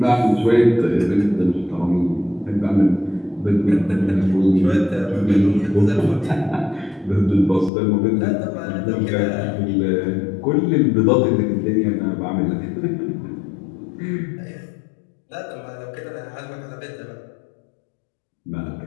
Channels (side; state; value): right; drops out; at 7.7 s